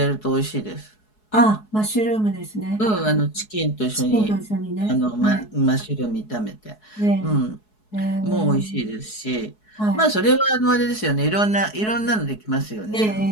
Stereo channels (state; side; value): late; right; 4.7 ms